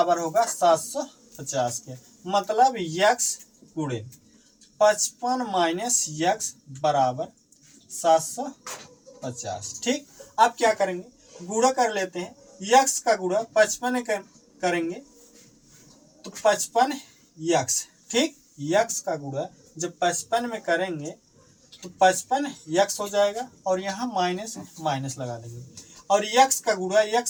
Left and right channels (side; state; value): both; identical; correlation 1.00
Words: होगा, 750 के। मतलब यक्स गुणे 55 माइनस यक्स बराबर 750। ठीक, अब क्या करेंगे, गुणा कर लेते हैं, यक्स का गुणा 55 करेंगे तो 55 यक्स। ठीक, यक्स का गुणा जब 55 में करेंगे तो 55 यक्स हो जाएगा और यहाँ माइनस माइनस लगा देंगे, और यक्स का गुणा